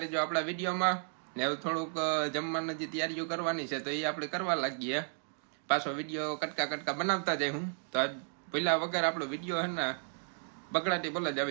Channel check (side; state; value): left; silent; 55 dB below the other